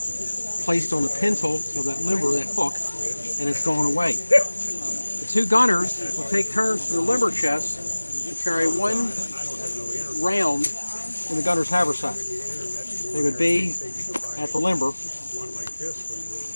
placed on the pintle of that limber, that hook, and it's going away. The 2 gunners will take turns to the limber chest and carry 1 round in the gunner's haversack. They would be at the limber.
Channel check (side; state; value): both; inverted; correlation -1.00